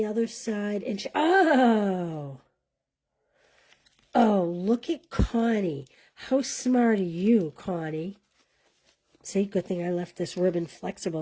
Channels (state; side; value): identical; both; correlation 1.00